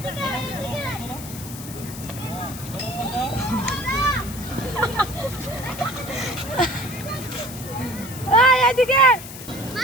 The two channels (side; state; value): left; noise; hiss, 13 dB below the sound